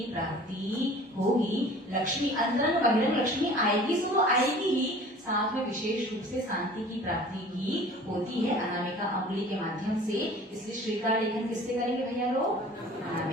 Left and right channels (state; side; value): normal; both; correlation 0.46